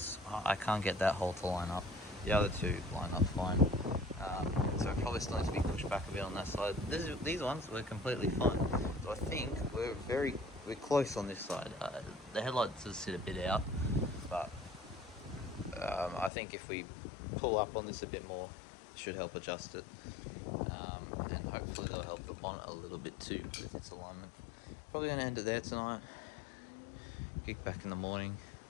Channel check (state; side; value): drops out; right; at 16.3 s